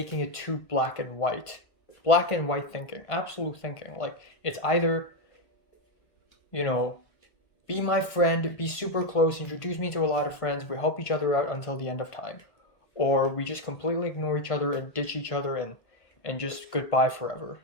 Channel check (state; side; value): late; right; 1.5 ms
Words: it too black and white? Black and white thinking, absolute thinking. Like, it's either, be my friend, be super close, introduce me to a lot of friends, we help each other out until the end of time. Or we just completely ignore each other and ditch each other and just goodbye forever,